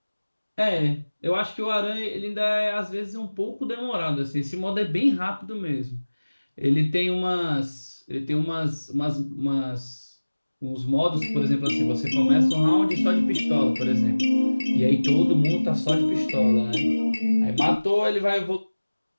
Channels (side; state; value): both; inverted; correlation -1.00